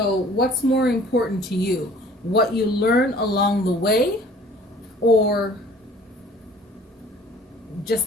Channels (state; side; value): normal; both; correlation 0.51